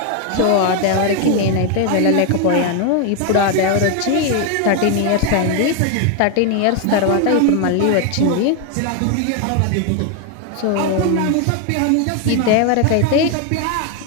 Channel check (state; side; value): different; both; correlation 0.01